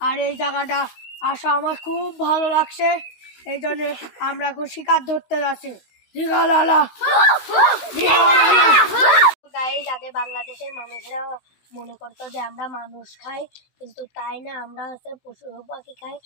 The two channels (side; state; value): right; late; 16 ms